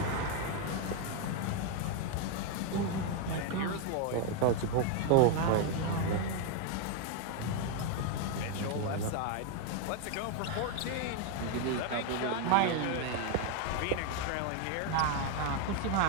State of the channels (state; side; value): different; both; correlation 0.01